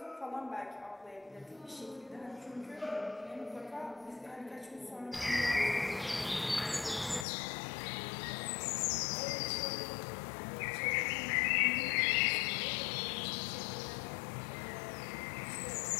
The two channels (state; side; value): drops out; right; at 7.2 s